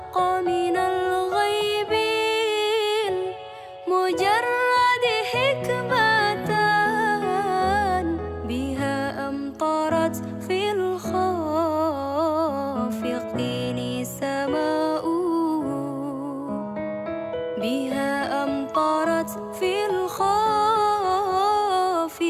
من الغيب المجرد حكمة بها أمطرت في الخافقين سماء بها أمطرت في الخافقين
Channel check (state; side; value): identical; both; correlation 1.00